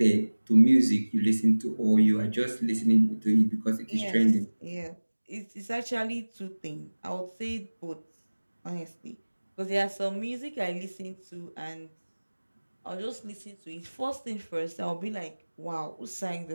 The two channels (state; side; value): inverted; both; correlation -1.00